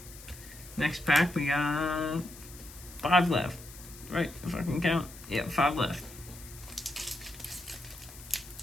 Next pack, we got 5 left. Right, if I can count. Yeah, 5 left.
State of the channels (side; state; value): left; noise; hiss, 17 dB below the sound